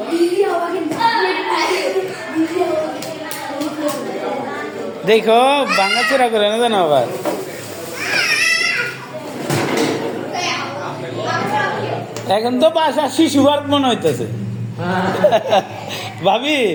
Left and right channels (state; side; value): identical; both; correlation 1.00